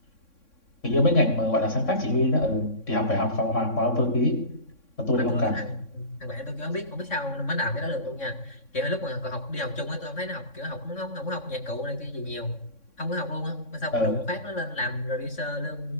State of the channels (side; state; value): right; late; 3.6 ms